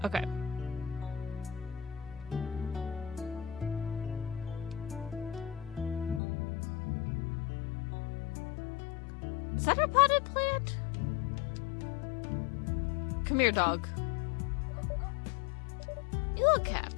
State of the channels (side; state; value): right; drops out; at 6.2 s